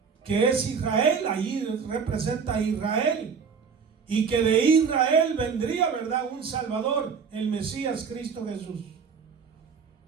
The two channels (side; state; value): left; quieter; 6.0 dB